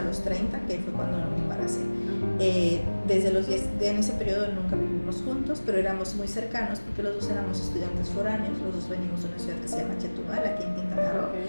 los 30, que fue cuando me embaracé. Desde los 10, en ese periodo nunca vivimos juntos, pero éramos muy cercanos porque los dos éramos estudiantes foráneos, los dos venimos de una ciudad que se llama Chetumal, aquí en Quintana Roo.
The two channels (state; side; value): inverted; both; correlation -1.00